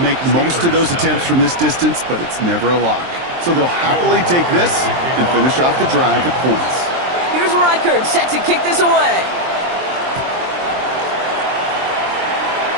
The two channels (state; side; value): late; left; 23 ms